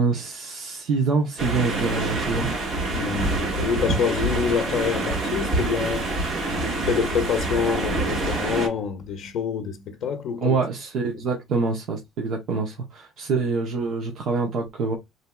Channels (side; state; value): both; normal; correlation 0.43